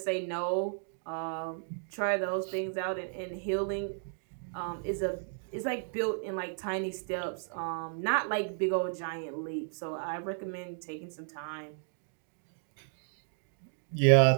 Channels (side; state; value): left; silent; digital silence